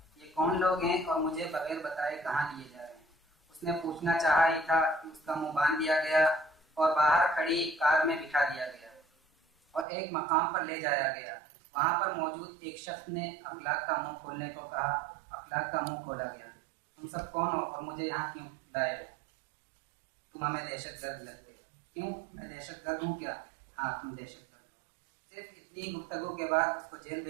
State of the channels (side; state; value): left; drops out; at 9.9 s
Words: ये कौन लोग हैं और मुझे बगैर बताए कहाँ लिए जा रहे हैं? उसने पूछना चाहा ही था कि उसका मुंह बांध दिया गया और बाहर खड़ी कार में बिठा दिया गया और एक मकाम पर ले जाया गया। वहां पर मौजूद एक शख्स ने अखलाक का मुंह खोलने को कहा। अखलाक का मुंह खोला गया। तुम सब कौन हो और मुझे यहाँ क्यों लाए हो? तुम हमें दहशतगर्द लगते हो। क्यों? मैं दहशतगर्द हूँ क्या? हाँ, तुम दहशतगर्द। सिर्फ इतनी गुफ्तगू के बाद उसको जेल